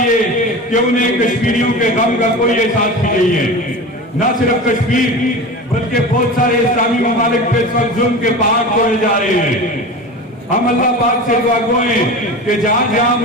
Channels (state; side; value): normal; both; correlation 0.31